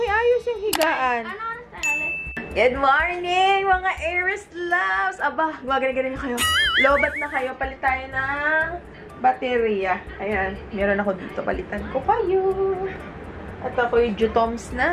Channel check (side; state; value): both; identical; correlation 1.00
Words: yung higaan. Ano oras tayo ulit? Good morning, mga Aries loves! Aba, gumagana-gana kayo. Lobat na kayo. Palit tayo ng baterya. Ayan, meron ako dito. Palitan ko kayo. At ako yung Jutom